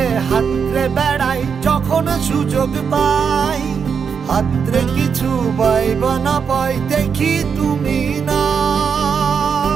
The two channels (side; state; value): left; quieter; 6.4 dB